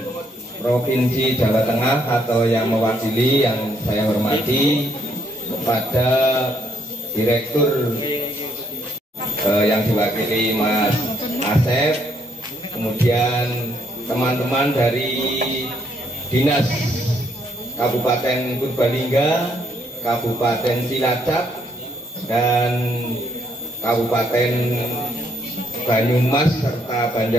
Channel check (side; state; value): both; normal; correlation 0.71